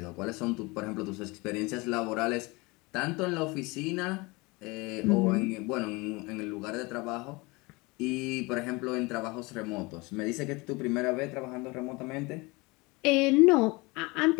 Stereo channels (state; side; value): quieter; right; 25.1 dB